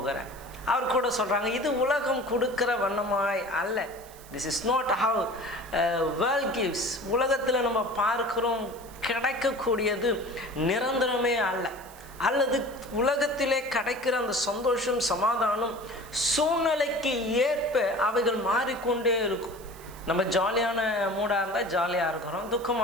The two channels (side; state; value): right; noise; hiss, 21 dB below the sound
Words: அவர் கூட சொல்றாங்க, இது உலகம் கொடுக்கிற வண்ணமாய் அல்ல. This is not how world gives. உலகத்தில் நம்ம பார்க்கிறோம் கிடைக்கக்கூடியது நிரந்தரமே அல்ல, அல்லது உலகத்திலே கிடைக்கிற அந்த சந்தோஷம் சமாதானம் சூழ்நிலைக்கு ஏற்ப அவைகள் மாறிக்கொண்டே இருக்கும். நம்ம ஜாலியான மூடாக இருந்தால் ஜாலியாக இருக்கிறோம்,